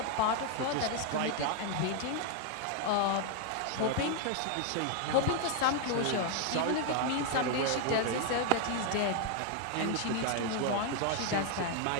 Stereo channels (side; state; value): both; different; correlation 0.00